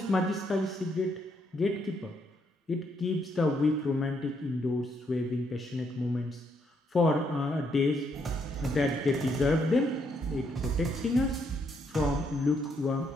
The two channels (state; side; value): normal; both; correlation 0.74